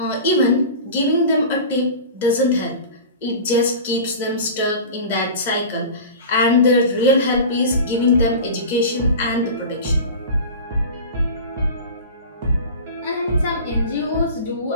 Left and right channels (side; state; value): both; inverted; correlation -0.34